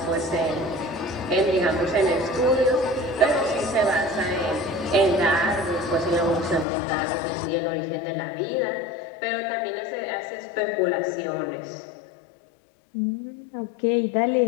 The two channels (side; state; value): right; drops out; at 6.7 s